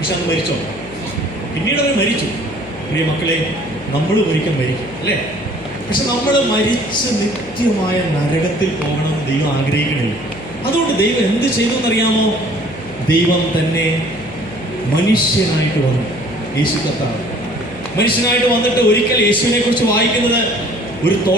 അന്ന് മരിച്ചോ? പിന്നീട് അവർ മരിച്ചു. പ്രിയ മക്കളെ, നമ്മൾ ഒരിക്കൽ മരിക്കും അല്ലേ? പക്ഷെ നമ്മൾ മരിച്ച് നിത്യമായ നരകത്തിൽ പോകണമെന്ന് ദൈവം ആഗ്രഹിക്കണില്ല. അതുകൊണ്ട് ദൈവം എന്ത് ചെയ്തു എന്നറിയാമോ? ദൈവം തന്നെ മനുഷ്യനായിട്ട് വന്നു. യേശു കർത്താവ് മനുഷ്യനായിട്ട് വന്നിട്ട് ഒരിക്കൽ യേശുവിനെ കുറിച്ച് വായിക്കുന്നത്, ഒരു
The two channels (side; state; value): left; noise; hum, 19 dB below the sound